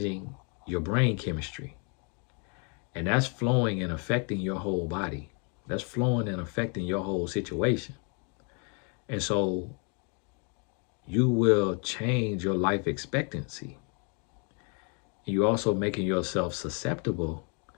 your brain chemistry. And that's flowing and affecting your whole body. That's flowing and affecting your whole situation. And so you will change your life expectancy. You're also making yourself susceptible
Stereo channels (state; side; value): quieter; right; 36.6 dB